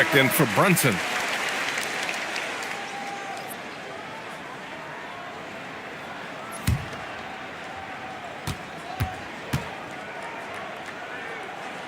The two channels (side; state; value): both; identical; correlation 1.00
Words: in for Brunson.